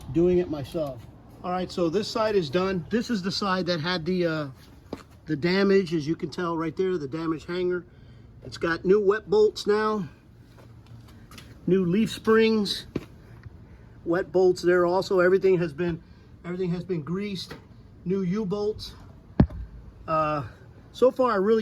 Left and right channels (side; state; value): both; identical; correlation 1.00